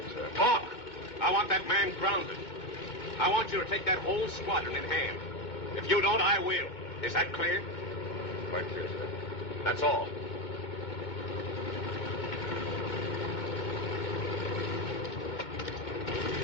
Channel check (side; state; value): right; late; 2.2 ms